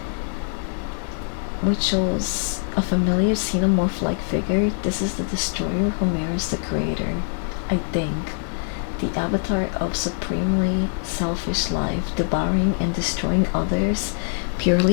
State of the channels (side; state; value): right; silent; 59 dB below the other